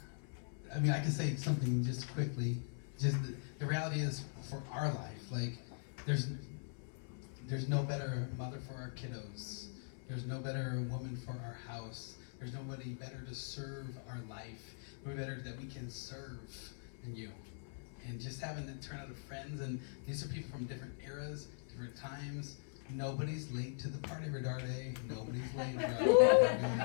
I can say something just quickly. Just the reality is, for our life, there's no better mother for our kiddos. There's no better woman for our house. There's nobody better to serve our life. Nobody better that we can serve than you. And just having to turn out of friends, and these are people from different eras, different times. Nobody's late to the party, Redarde. Nobody's late.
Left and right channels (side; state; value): right; silent; 51 dB below the other